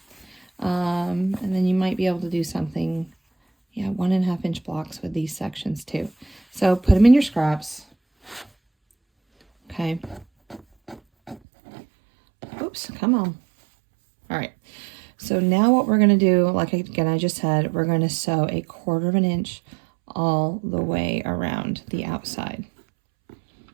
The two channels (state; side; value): drops out; left; at 11.4 s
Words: And then you might be able to do something, yeah, 1.5 inch blocks with these sections too. So put them in your scraps. Okay. Oops, come on. All right. So now what we're going to do, like again, I just said, we're going to sew a 1/4 inch all the way around the outside.